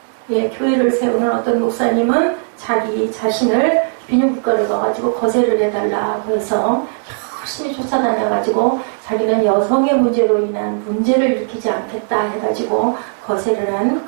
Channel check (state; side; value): silent; left; digital silence